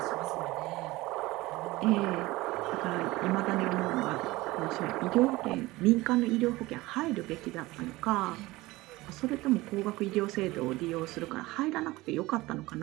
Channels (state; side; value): quieter; left; 19.8 dB